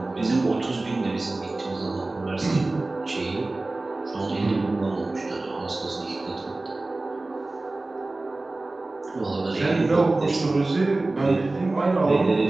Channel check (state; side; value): quieter; left; 3.0 dB